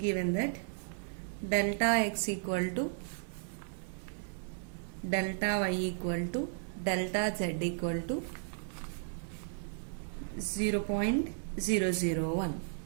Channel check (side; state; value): left; silent; 55 dB below the other